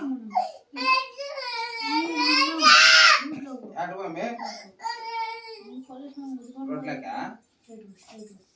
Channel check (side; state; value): both; identical; correlation 1.00